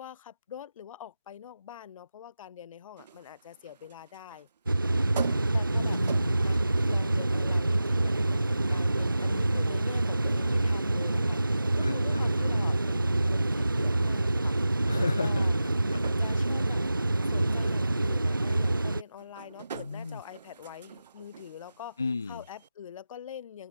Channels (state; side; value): inverted; both; correlation -0.93